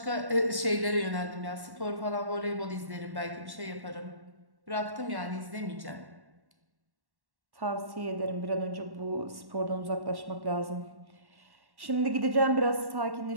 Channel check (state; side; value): late; left; 1.1 ms